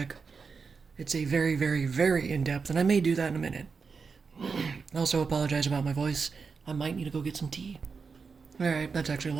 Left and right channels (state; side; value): quieter; left; 5.2 dB